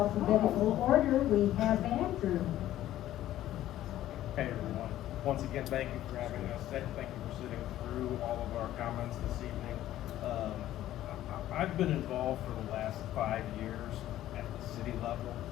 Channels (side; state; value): right; quieter; 13.4 dB